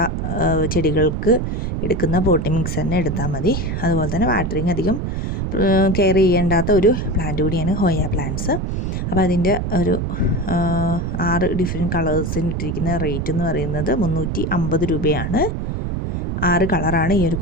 ചെടികൾക്ക് എടുക്കുന്ന പോട്ടി മിക്സ് തന്നെ എടുത്താൽ മതി. അതുപോലെ തന്നെ വാട്ടറിങ് അധികം കെയർ ചെയ്യേണ്ടാത്ത ഒരു പ്ലാന്റ് കൂടിയാണ് ഹോയ പ്ലാന്റ്സ്. അപ്പോൾ അതിൻ്റെ ഒരു 6 ഡിഫറെൻറ്റ് കളേഴ്സിന് ഇട്ടിരിക്കുന്ന റേറ്റ് എന്ന് പറയുന്നത് 350 രൂപയാണ്. 6 കളറാണ് ഈ ഒരു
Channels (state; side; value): noise; right; rumble, 2 dB below the sound